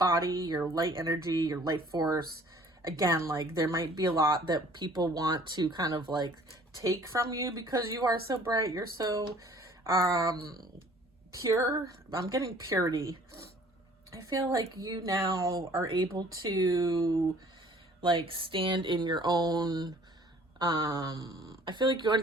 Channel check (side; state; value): both; normal; correlation 0.53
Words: your light energy, your light force. Again, like there might be a lot that people want to kind of like take from you because you are so bright. You're so pure. I'm getting purity. I feel like you now are able to like stand in your own I feel like you